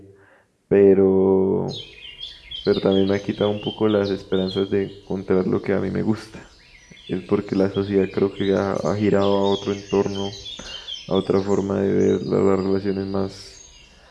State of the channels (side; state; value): both; identical; correlation 1.00